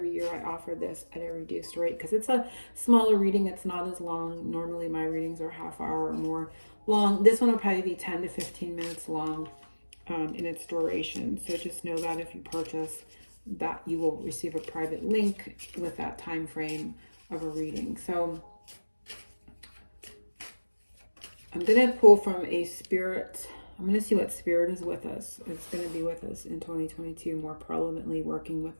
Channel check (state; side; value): inverted; both; correlation -1.00